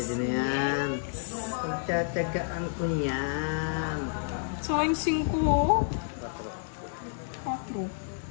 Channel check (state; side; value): silent; right; digital silence